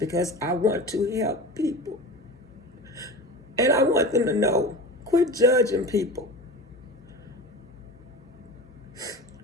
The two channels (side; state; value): both; normal; correlation 0.31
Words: I want to help people. And I want them to know, quit judging people.